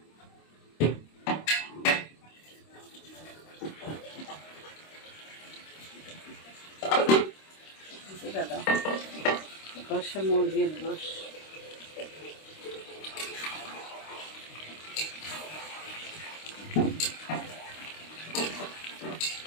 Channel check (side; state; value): right; late; 26 ms